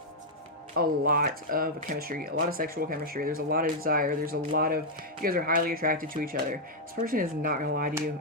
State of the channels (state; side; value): normal; both; correlation -0.03